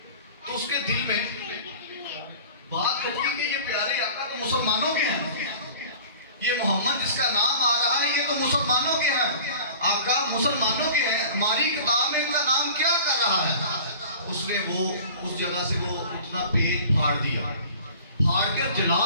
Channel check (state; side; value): inverted; both; correlation -0.43